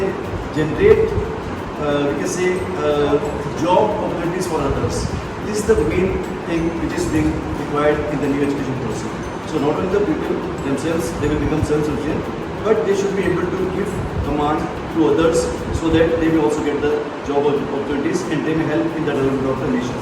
generate, we can say, job opportunities for others. This is the main thing which is being required in the new education policy. So not only the people themselves, they will become self-sufficient, but they should be able to give command to others so that they will also get the job opportunities and they may help in the development of the nation.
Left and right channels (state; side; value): identical; both; correlation 1.00